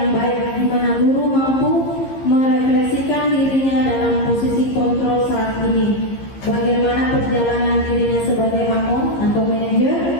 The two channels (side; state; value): right; late; 15 ms